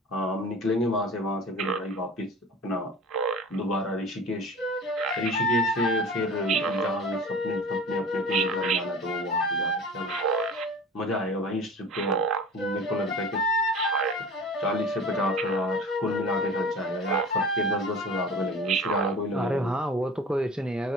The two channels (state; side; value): normal; both; correlation 0.38